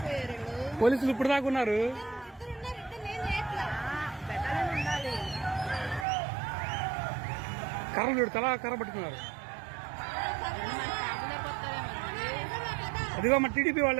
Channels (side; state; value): left; drops out; at 6.1 s